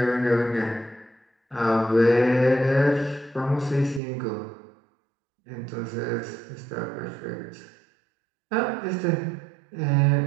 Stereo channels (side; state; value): left; drops out; at 4.0 s